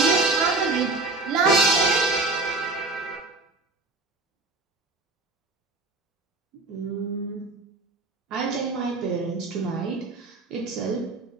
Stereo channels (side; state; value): left; quieter; 3.3 dB